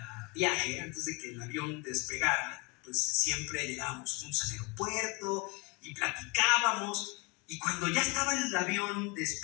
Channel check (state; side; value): quieter; right; 28.5 dB